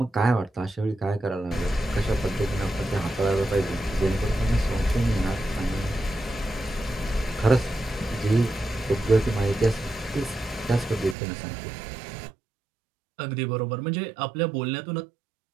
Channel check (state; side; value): drops out; left; at 11.2 s